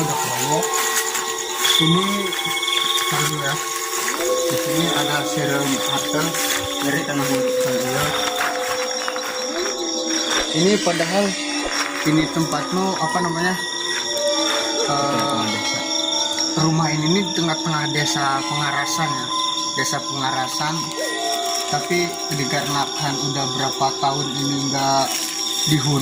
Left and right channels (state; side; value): identical; both; correlation 1.00